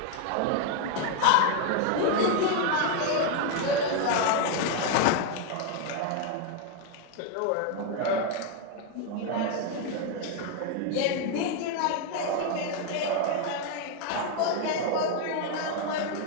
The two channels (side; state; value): both; different; correlation 0.01